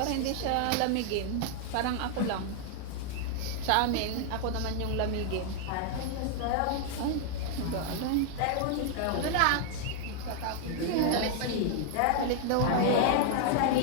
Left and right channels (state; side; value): different; both; correlation 0.00